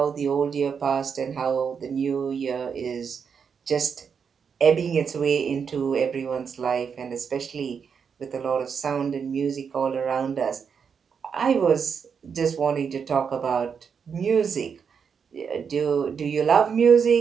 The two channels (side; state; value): left; quieter; 6.5 dB